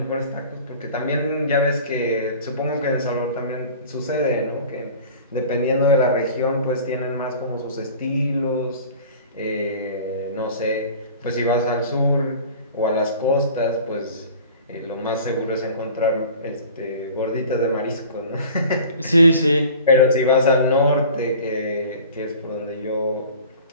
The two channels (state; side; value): inverted; both; correlation -0.42